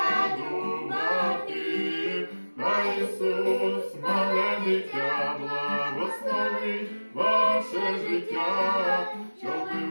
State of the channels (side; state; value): both; inverted; correlation -1.00